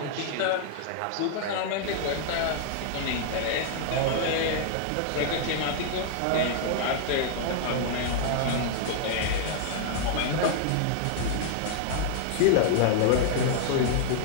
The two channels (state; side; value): different; both; correlation -0.01